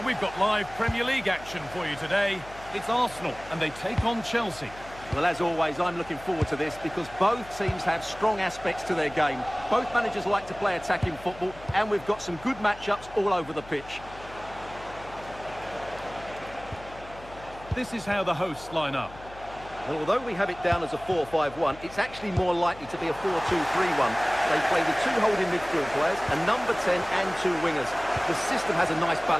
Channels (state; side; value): noise; left; hum, 18 dB below the sound